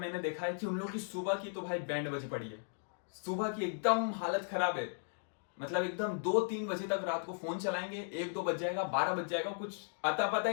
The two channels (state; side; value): silent; right; digital silence